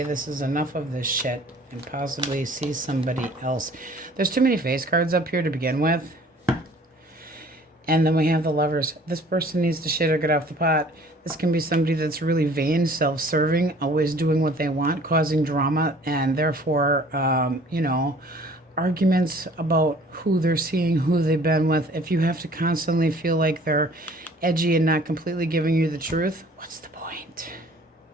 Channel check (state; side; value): normal; both; correlation 0.52